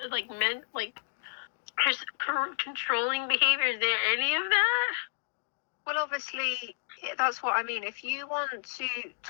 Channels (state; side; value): silent; right; digital silence